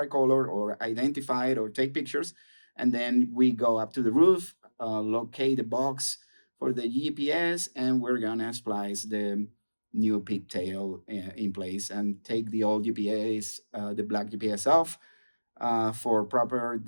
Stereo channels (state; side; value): inverted; both; correlation -1.00